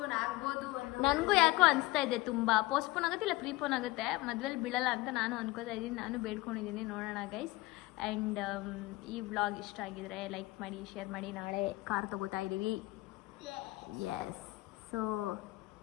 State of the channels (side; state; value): right; quieter; 20.2 dB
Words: ಆಗ್ಬೋದು. ನನಗೂ ಯಾಕೋ ಅನಿಸ್ತಾ ಇದೆ ತುಂಬ ಪೋಸ್ಟ್ಪೋನ್ ಆಗುತ್ತೆ, ಇಲ್ಲ ಪ್ರೀಪೋನ್ ಆಗುತ್ತೆ, ಮದ್ವೆಲಿ ಬೀಳಲ್ಲ ಅಂತ ನಾನು ಅನ್ಕೋತಾ ಇದ್ದೀನಿ. ನಾನು ಬೇಡ್ಕೊಂಡಿದ್ದೀನಿ, ನೋಡೋಣ ಗೈಸ್. ಆ್ಯಂಡ್ ಈ ವ್ಲಾಗ್ ಇಷ್ಟ ಆಗಿದ್ರೆ ಲೈಕ್ ಮಾಡಿ, ಶೇರ್ ಮಾಡಿ. ನಾಳೆ ಕಾರ್ ತಗೋತಾ ಇದ್ದೀವಿ. ಎಸ್, ಸೊ